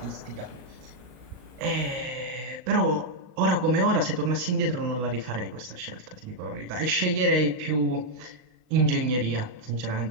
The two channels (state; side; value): late; left; 39 ms